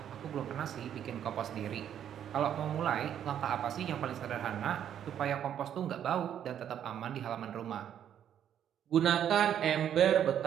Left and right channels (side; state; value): left; quieter; 9.7 dB